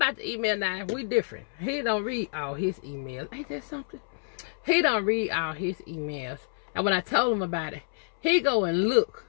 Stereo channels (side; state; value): right; silent; 59 dB below the other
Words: the email. Now we different. He don't read all his emails. Ain't that something? He don't read all his emails. And when I told him about it, he go and look,